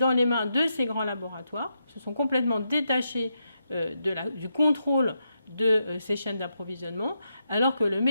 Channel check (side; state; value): both; inverted; correlation -0.83